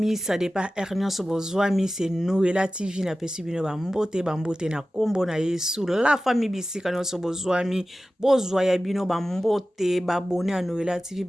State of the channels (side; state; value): both; normal; correlation 0.95